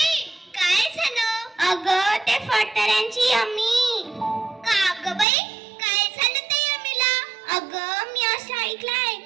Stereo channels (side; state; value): left; drops out; at 5.2 s